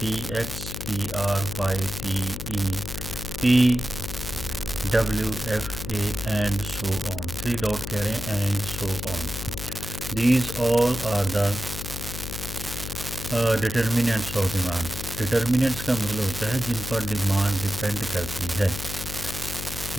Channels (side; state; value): left; noise; hum, 7 dB below the sound